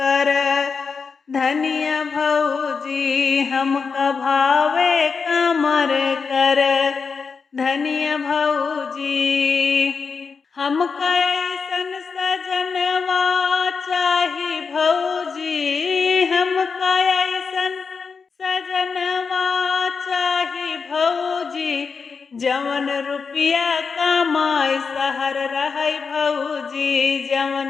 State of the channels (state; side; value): quieter; right; 5.3 dB